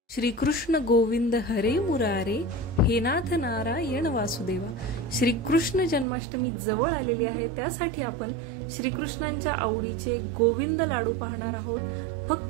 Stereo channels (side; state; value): left; drops out; at 6.1 s